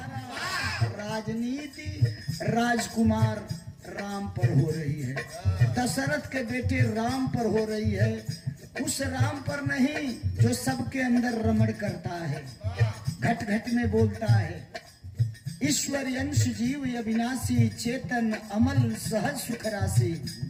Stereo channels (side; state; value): both; identical; correlation 1.00